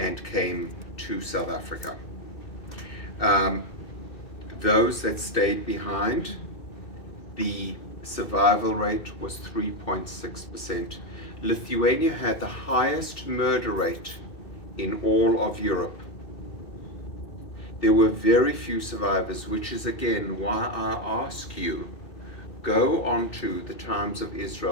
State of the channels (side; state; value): right; late; 2.3 ms